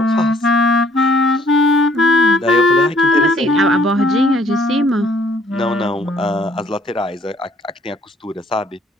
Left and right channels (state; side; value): normal; both; correlation 0.63